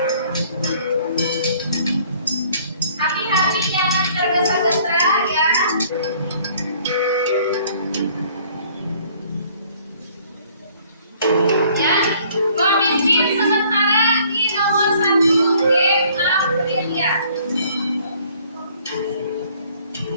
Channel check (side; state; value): both; inverted; correlation -0.58